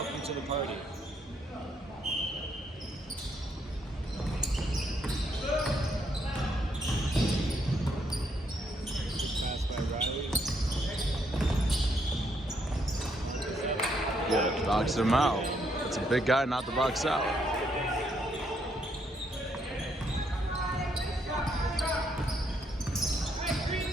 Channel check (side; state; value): both; normal; correlation 0.74